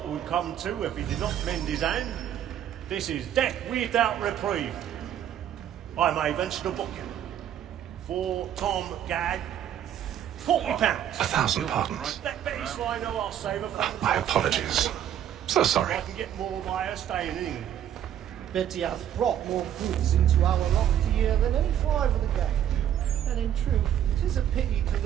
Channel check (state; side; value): quieter; left; 10.4 dB